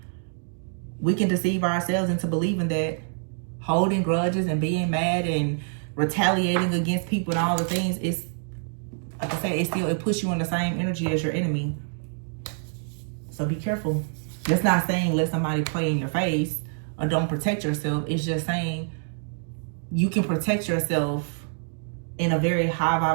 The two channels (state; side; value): silent; left; 61 dB below the other